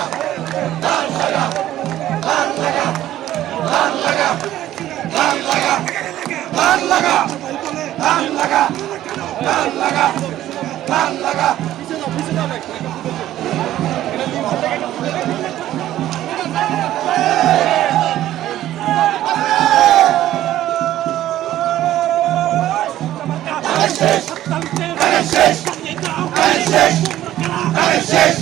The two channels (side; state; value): left; quieter; 13.4 dB